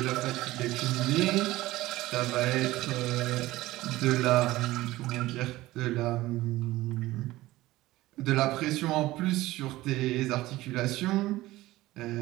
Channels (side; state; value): left; quieter; 17.6 dB